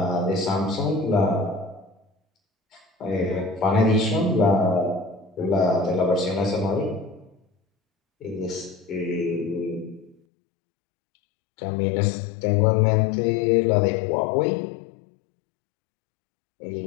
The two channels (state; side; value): drops out; right; at 10.2 s